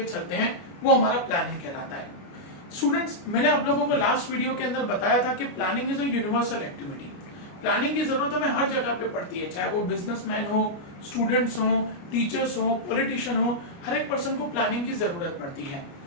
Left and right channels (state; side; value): late; right; 29 ms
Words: चलते हैं, वो हमारा प्लानिंग कहलाता है। स्टूडेंट्स, मैंने आप लोगों को लास्ट वीडियो के अंदर बताया था कि planning is a universal activity. Planning की जरूरत हमें हर जगह पे पड़ती है, चाहे वो बिजनेसमैन हो, स्टूडेंट्स हो, टीचर्स हो, पॉलिटिशियन हो, हर एक पर्सन को प्लानिंग की जरूरत पड़ती है।